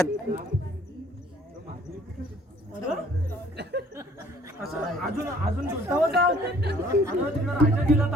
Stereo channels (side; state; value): both; normal; correlation 0.57